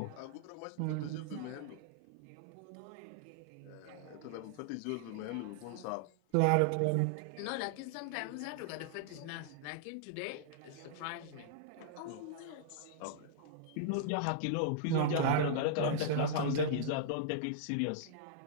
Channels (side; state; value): both; different; correlation -0.01